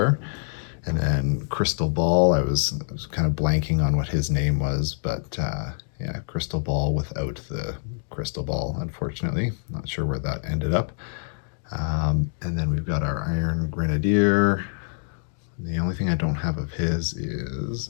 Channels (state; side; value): silent; right; 61 dB below the other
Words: And then Crystal Ball, I was kind of blanking on what his name was, but yeah, Crystal Ball without the crystal ball, unfortunately. Not sure where that ended up. And then we've got our Iron Grenadier. The only thing I don't have of his is